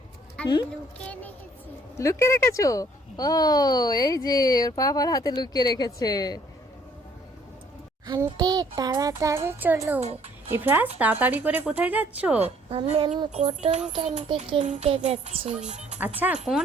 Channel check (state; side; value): normal; both; correlation 0.61